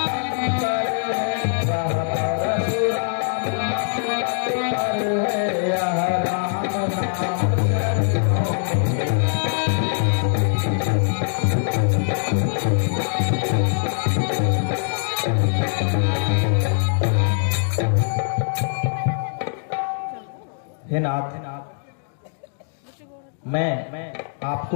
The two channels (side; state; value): right; silent; digital silence